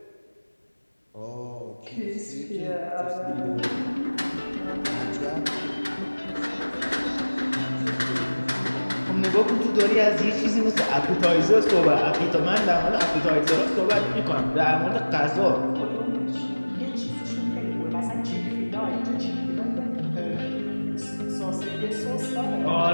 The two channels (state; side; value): inverted; both; correlation -1.00